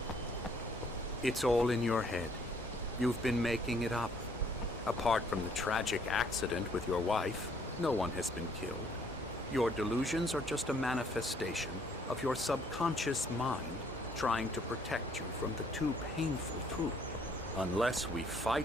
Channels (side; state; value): both; normal; correlation 0.64